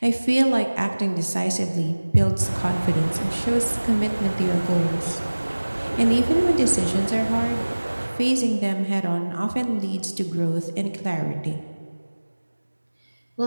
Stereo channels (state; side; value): inverted; both; correlation -1.00